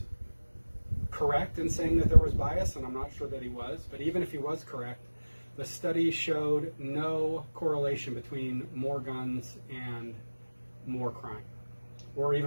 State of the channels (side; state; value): both; inverted; correlation -1.00